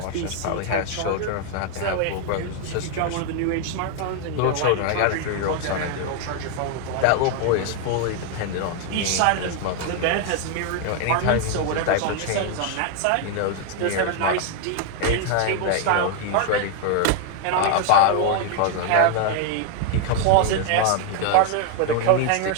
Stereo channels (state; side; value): different; both; correlation 0.00